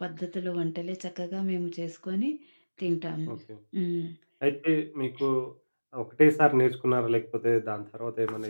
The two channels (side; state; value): both; inverted; correlation -1.00